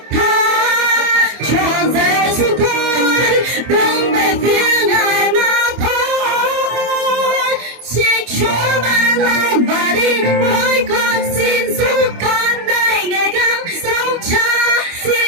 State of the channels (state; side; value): late; left; 25 ms